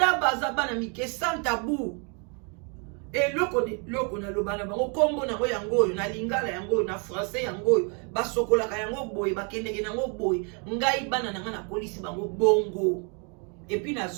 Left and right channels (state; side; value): quieter; left; 36.4 dB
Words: baza bana mike sans tabou et loko na lobana bango kombo na ngo yango na lingala yango na français yango basokola ka yango boy bakendeke nango boy ngai bana nga na police bango bongo et puis na